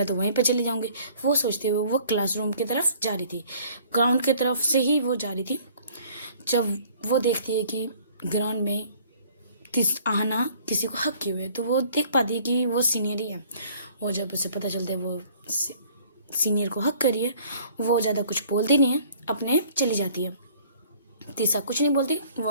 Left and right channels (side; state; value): both; inverted; correlation -0.55